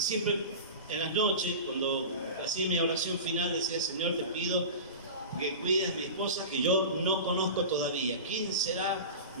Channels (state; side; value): inverted; both; correlation -0.30